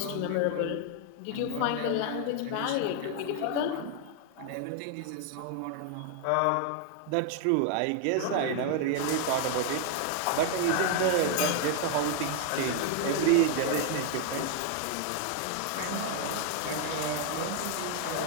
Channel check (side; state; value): both; different; correlation 0.00